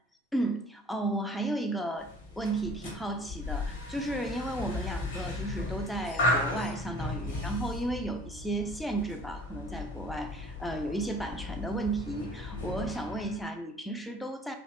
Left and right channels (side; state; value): both; normal; correlation 0.50